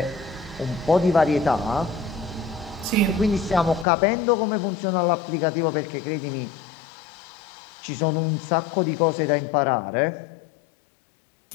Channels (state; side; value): drops out; right; at 3.9 s